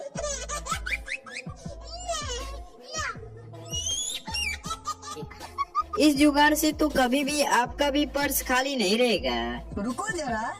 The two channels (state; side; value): identical; both; correlation 1.00